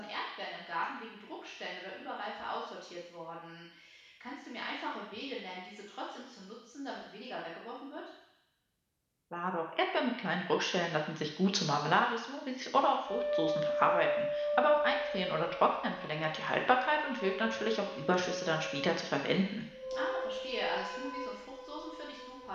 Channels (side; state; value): both; identical; correlation 1.00